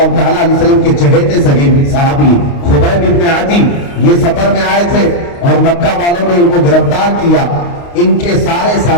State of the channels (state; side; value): late; right; 29 ms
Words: تعالیٰ علیہ وسلم کے چہیتے صحابی خبیب ابن عدی یہ سفر میں آئے تھے اور مکہ والوں نے ان کو گرفتار کیا، ان کے سارے